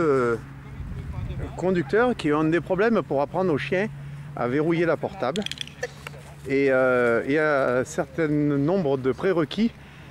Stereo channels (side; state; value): both; identical; correlation 1.00